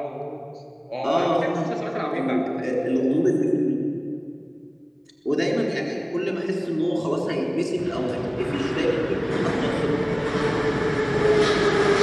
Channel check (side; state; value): both; identical; correlation 1.00